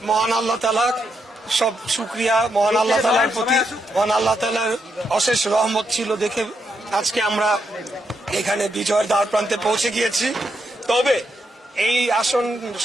মহান আল্লাহ তাআলা, সব শুকরিয়া মহান আল্লাহ তাআলার প্রতি। মহান আল্লাহ তাআলার অশেষ রহমত ছিল দেখে আজকে আমরা এখানে বিজয়ের দ্বার প্রান্তে পৌঁছে গিয়েছি। তবে এই আসন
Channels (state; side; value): normal; both; correlation 0.81